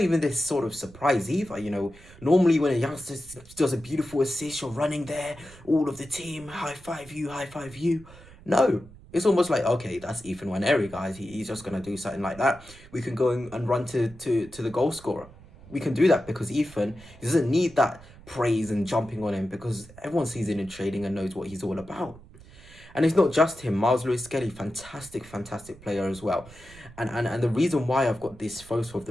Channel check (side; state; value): right; noise; rumble, 21 dB below the sound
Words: even this sort of surprise either. Normally when a youngster does a beautiful assist, you're running there, all of the team, high five you, high five you. No, it's almost like, okay, that's Ethan Nwaneri, guys. He's just going to do something like that. We can go and run to the goal scorer. We can do that because Ethan, he doesn't need that praise and jumping on him, because everyone sees him in training and knows what he's all about. And it's not just him. Lewis-Skelly, fantastic player as well. And the reason why I've got this photo of